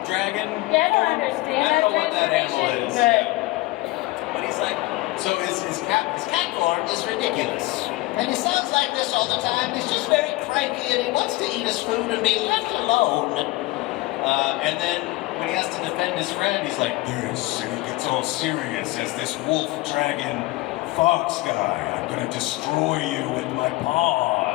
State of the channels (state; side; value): quieter; right; 19.9 dB